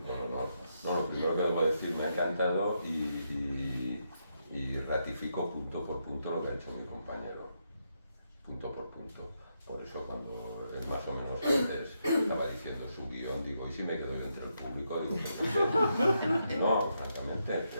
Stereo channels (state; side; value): inverted; both; correlation -0.81